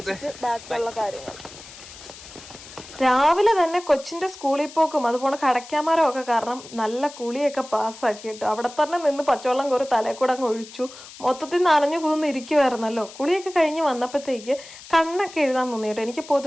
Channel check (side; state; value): left; noise; hiss, 17 dB below the sound